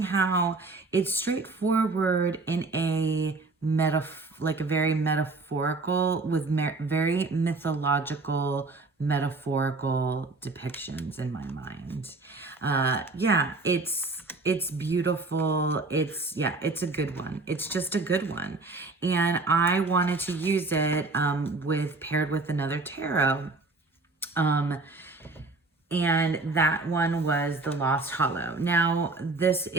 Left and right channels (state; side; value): quieter; left; 3.5 dB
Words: how it's straightforward in a very metaphorical, with very mythological, metaphorical depictions in my mind. It's beautiful. It's a good one. It's just a good one. And I wanted to use it paired with another tarot. And that one was the Lost Hollow. Now, this